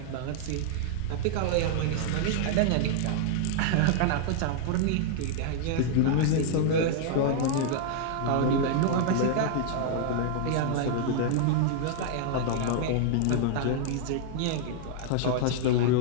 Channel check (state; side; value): different; both; correlation -0.01